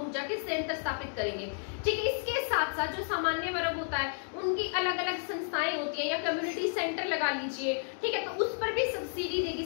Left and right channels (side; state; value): right; silent; 57 dB below the other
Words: ऊर्जा के संयंत्र स्थापित करेंगे। ठीक है, इसके साथ साथ जो सामान्य वर्ग होता है उनकी अलग अलग संस्थाएं होती है या कम्युनिटी सेंटर लगा लीजिए। ठीक है, तो उस पर भी सब्सिडी